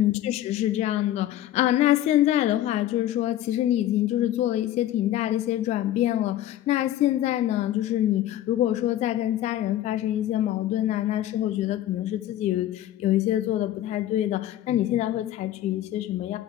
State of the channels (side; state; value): right; quieter; 13.0 dB